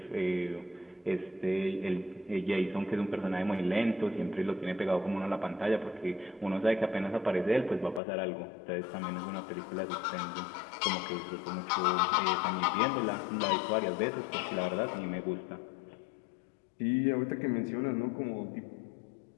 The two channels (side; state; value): right; drops out; at 8.0 s